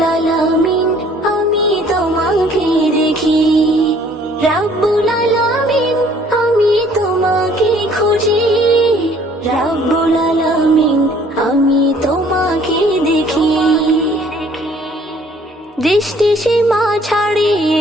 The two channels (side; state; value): both; normal; correlation 0.58